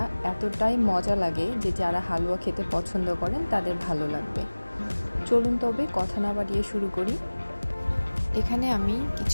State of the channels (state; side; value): inverted; both; correlation -1.00